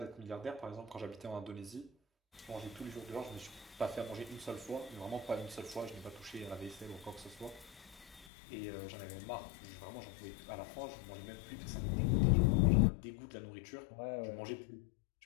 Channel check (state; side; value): drops out; right; at 8.2 s